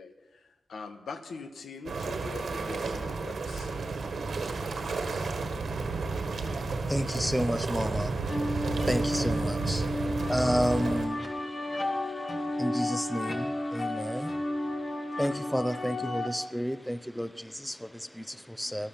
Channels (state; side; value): normal; both; correlation 0.93